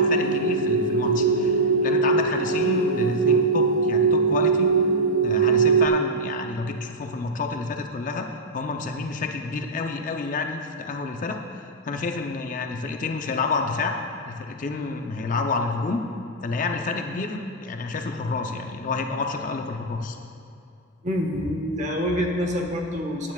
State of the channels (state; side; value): normal; both; correlation -0.05